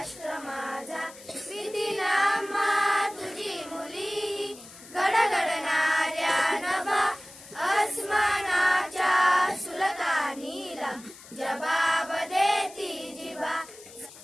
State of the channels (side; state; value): left; noise; hiss, 19 dB below the sound